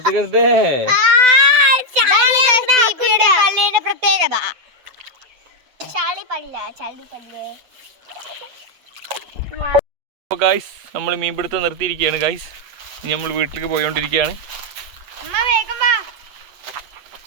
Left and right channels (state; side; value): late; left; 7.9 ms